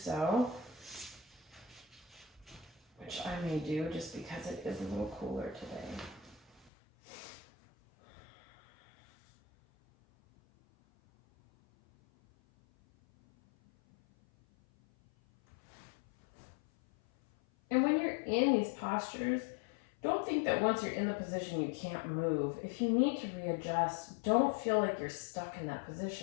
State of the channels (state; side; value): drops out; right; at 6.7 s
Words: which I may do just because it is a little cooler today. And when you're in these postures, don't think that once you're in the position you can't move. If you need to readjust, don't feel like you're stuck in that